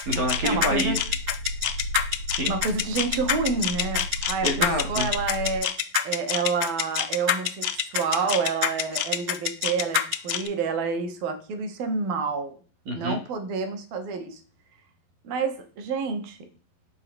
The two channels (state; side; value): late; left; 11 ms